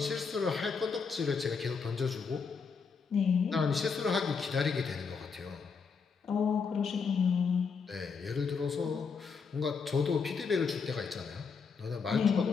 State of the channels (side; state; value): right; quieter; 5.5 dB